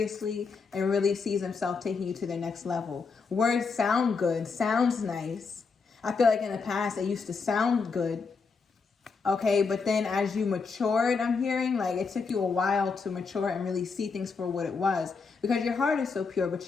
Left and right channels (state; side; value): quieter; right; 4.9 dB